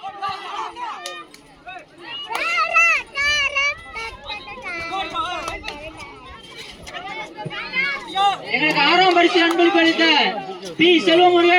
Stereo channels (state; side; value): identical; both; correlation 1.00